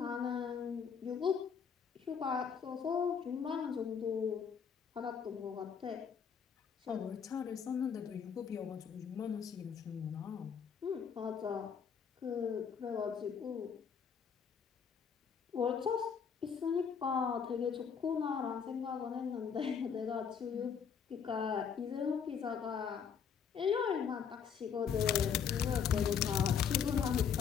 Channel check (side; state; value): right; quieter; 7.0 dB